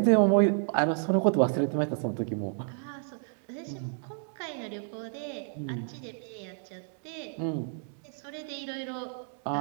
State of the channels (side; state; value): left; silent; 57 dB below the other